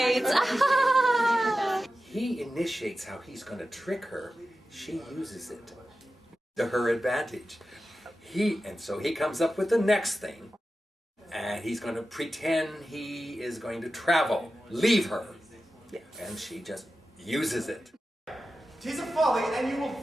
He initiates how he's going to trick her. She uses it to her advantage. So he comes up with the next thing, and he's going to pretend he is going to travel, leave her, and she just uses it. 'Tis a folly, and you will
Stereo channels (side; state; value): both; normal; correlation 0.93